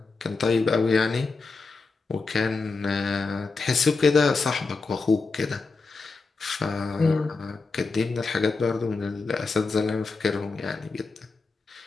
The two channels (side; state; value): right; quieter; 4.1 dB